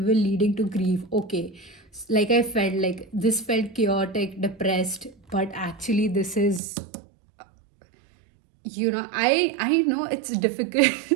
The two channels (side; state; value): left; drops out; at 6.6 s